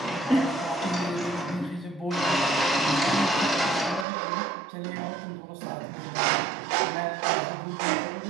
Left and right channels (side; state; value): left; drops out; at 4.0 s